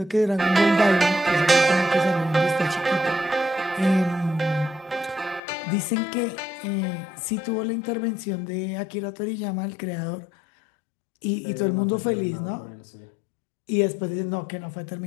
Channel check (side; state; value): right; drops out; at 5.4 s